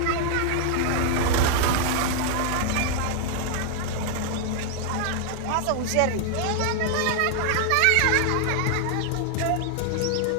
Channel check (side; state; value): both; different; correlation 0.00